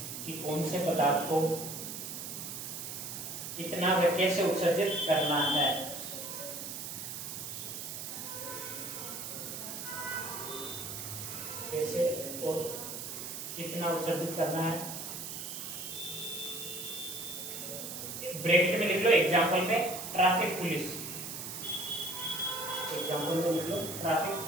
कि कौन से पदार्थ को कितना व कैसे उत्सर्जित करना है। कैसे और कितना उत्सर्जित करना है, ब्रैकेट में लिख लो एग्जाम्पल में ट्रैफिक पुलिस, एग्जाम्पल में लिख लो ट्रैफिक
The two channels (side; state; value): right; noise; hiss, 7 dB below the sound